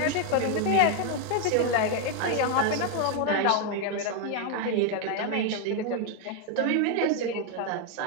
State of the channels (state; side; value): different; both; correlation 0.01